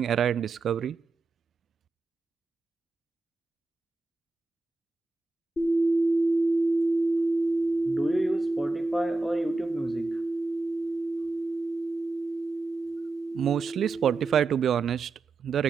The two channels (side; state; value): left; quieter; 3.5 dB